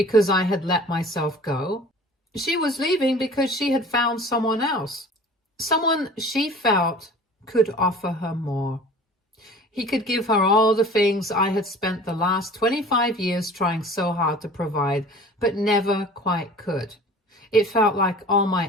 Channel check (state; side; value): normal; both; correlation 0.44